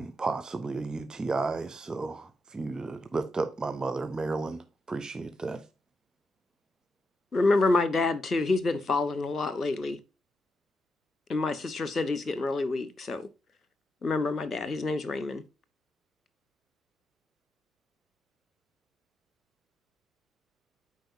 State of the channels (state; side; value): normal; both; correlation 0.85